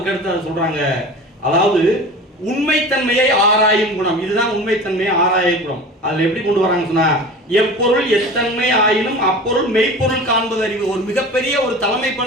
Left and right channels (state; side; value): normal; both; correlation 0.36